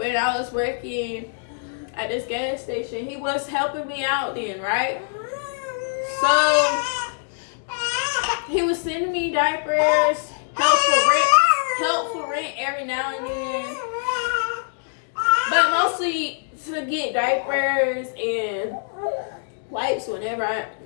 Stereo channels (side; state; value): right; silent; digital silence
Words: I was working at this gas station, he was helping me out then, right? So he was sending me diapers, help for rent every now and then, but mostly to get diapers and wipes whenever I